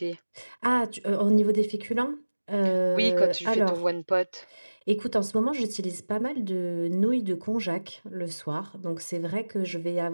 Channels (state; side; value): inverted; both; correlation -1.00